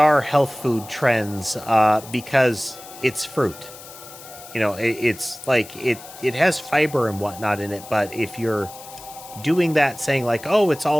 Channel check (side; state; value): left; noise; hiss, 17 dB below the sound